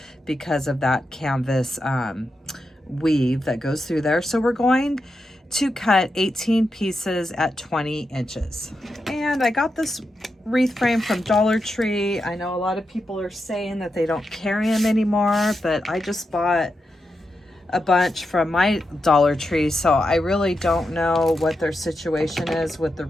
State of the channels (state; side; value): normal; both; correlation 0.87